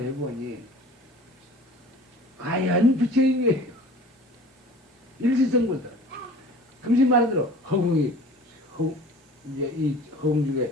해보니 과연 부처인 거예요. 일시성분도 금신 말한 대로 이제 이 허공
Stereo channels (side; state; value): both; normal; correlation 0.43